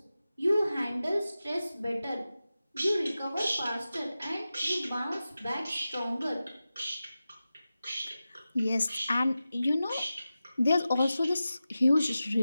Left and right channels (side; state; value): both; inverted; correlation -0.94